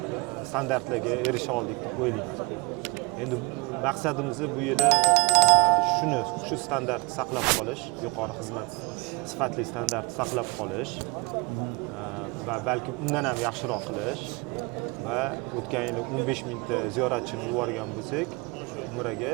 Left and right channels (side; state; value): left; quieter; 28.0 dB